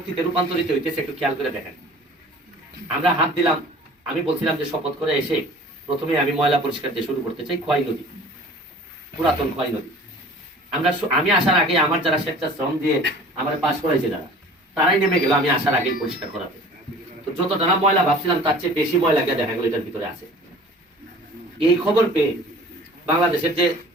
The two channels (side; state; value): both; normal; correlation 0.46